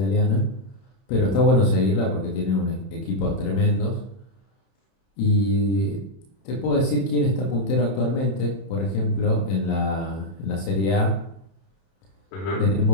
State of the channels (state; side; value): late; right; 31 ms